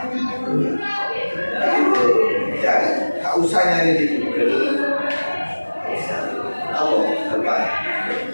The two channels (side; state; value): both; inverted; correlation -1.00